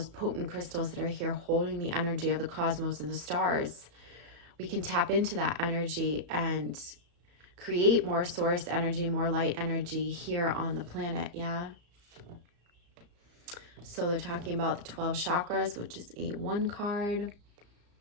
potent crystals that are here holding the energy of the cosmos and the stars, we can tap into that energy and create more source energy, more light energy here on the planet. Yeah. So they're talking about the 12 chakras, which is a 1 card.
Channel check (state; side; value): late; left; 34 ms